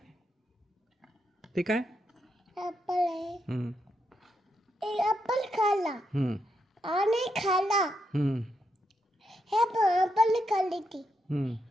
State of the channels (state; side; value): normal; both; correlation 0.81